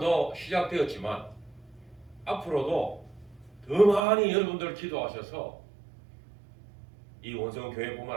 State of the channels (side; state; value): left; drops out; at 4.0 s